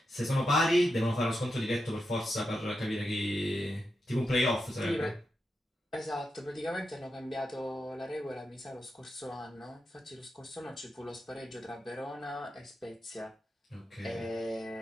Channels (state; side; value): normal; both; correlation 0.88